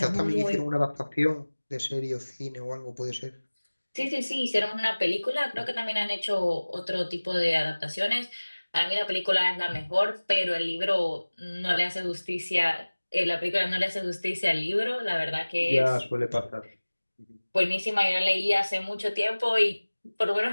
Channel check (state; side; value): inverted; both; correlation -1.00